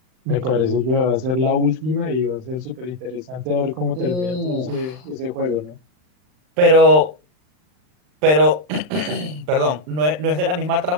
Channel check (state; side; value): late; left; 39 ms